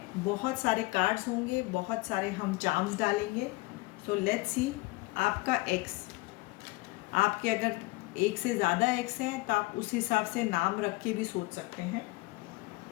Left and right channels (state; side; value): quieter; right; 23.2 dB